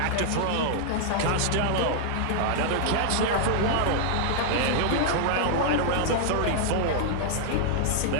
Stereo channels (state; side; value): different; both; correlation -0.01